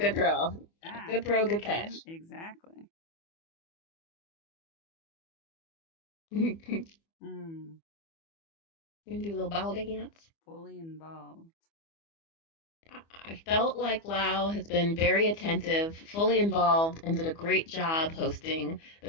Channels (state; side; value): late; right; 24 ms